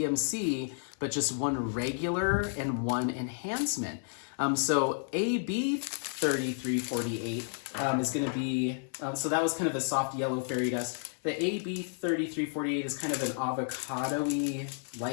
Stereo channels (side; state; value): right; silent; 57 dB below the other